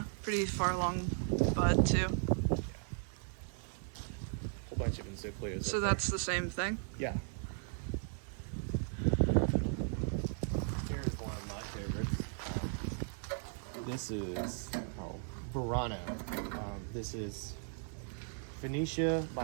pretty far along bud too. Yeah. Whole bunch of encyclias. So that's the same thing? Yeah. Here's one of my favorites. This is Verano. This is Phoenicia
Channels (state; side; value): silent; left; 53 dB below the other